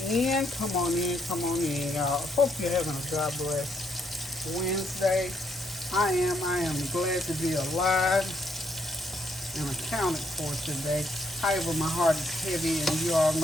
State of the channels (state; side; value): normal; both; correlation 0.73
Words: in, come on in, come on in, y'all. Hope you're having a God bless Wednesday. I am glad to be alive and accounted for today. However, my heart is heavy, and you all